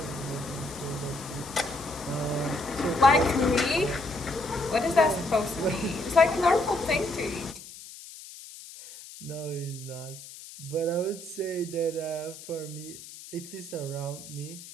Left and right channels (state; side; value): noise; left; hiss, 15 dB below the sound